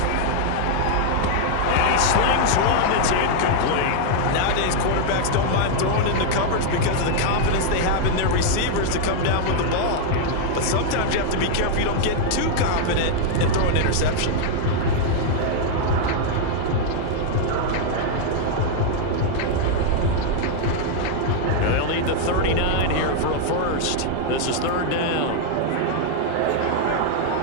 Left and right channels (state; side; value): different; both; correlation 0.00